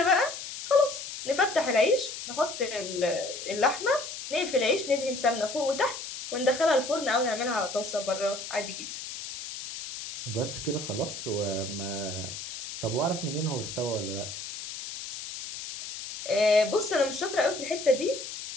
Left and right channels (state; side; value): noise; left; hiss, 9 dB below the sound